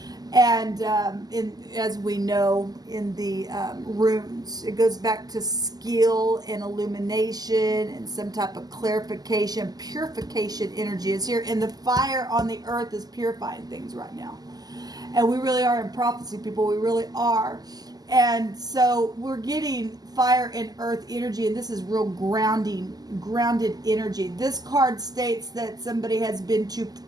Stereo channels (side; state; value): left; late; 0.19 ms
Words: And as we know in the runes, it goes back to skill and illumination and some type of clarification, purification energy is here. And the fire on the earth is purifying things right now. And we really are in prophecy, people. We really are. And so we're getting fire and earth energy, and this is real grounded energy. This card states that somebody has been too